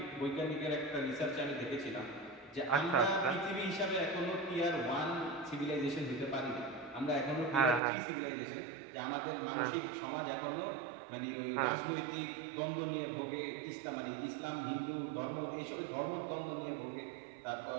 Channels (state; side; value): drops out; left; at 7.8 s